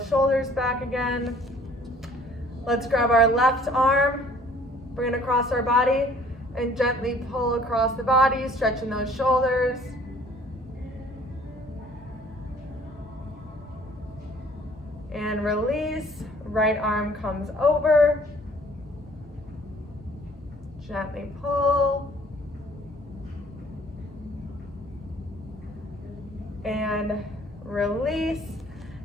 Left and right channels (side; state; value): both; normal; correlation 0.55